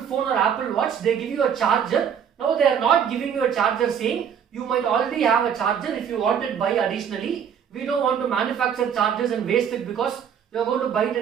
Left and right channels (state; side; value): quieter; left; 8.0 dB